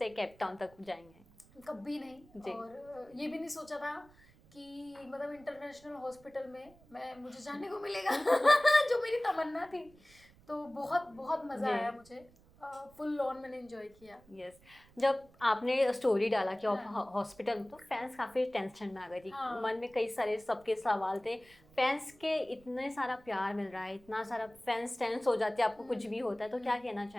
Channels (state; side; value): noise; right; rumble, 27 dB below the sound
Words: केप टाउन तक जाएंगे? कभी नहीं। जी। और ये भी नहीं सोचा था कि मतलब इंटरनेशनल हॉस्पिटल में मुझे जाने को मिलेगा जो मेरी तमन्ना थी। तो बहुत बहुत मज़ा जी। आया मुझे। फुल ऑन मैंने एंजॉय किया। यस, जब आपने स्टोरी डाला कि आप हाँ। हॉस्पिटल में, तो फैंस काफ़ी टेंशन में आ गई थी। हाँ। मन में कई सारे सबके सवाल थे। फैंस के इतने सारा प्यार मिल रहा है, इतना सारा फैंस टेंस हो जाते हैं आपको कुछ भी होता है, तो क्या कहना